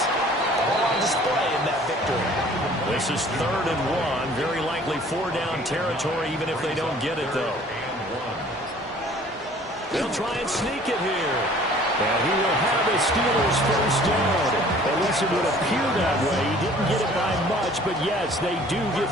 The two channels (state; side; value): normal; both; correlation 0.52